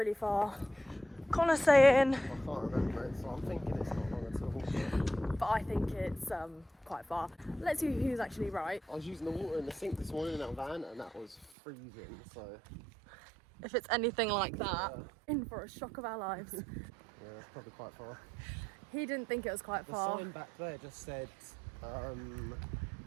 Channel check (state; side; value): drops out; left; at 11.5 s